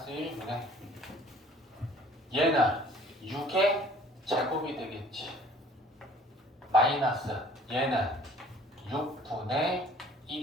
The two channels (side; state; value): both; normal; correlation 0.54